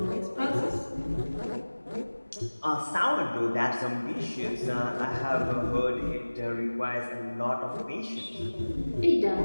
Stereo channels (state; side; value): inverted; both; correlation -1.00